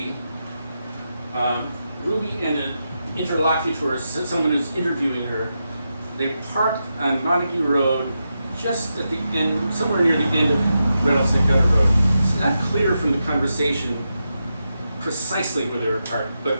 Ruby and an interlocutor, someone who's interviewing her, they parked on Montague Road just at the end, somewhere near the end of Rattlesnake Gutter Road. It's not clear from the conversation precisely where they were parked, but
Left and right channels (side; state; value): both; inverted; correlation -0.87